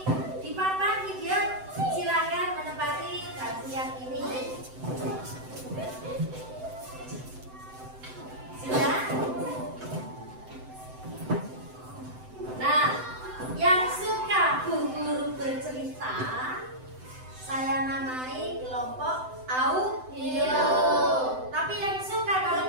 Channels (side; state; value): left; late; 7.8 ms